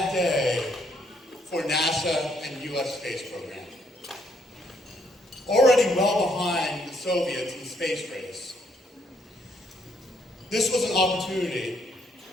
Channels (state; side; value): normal; both; correlation 0.71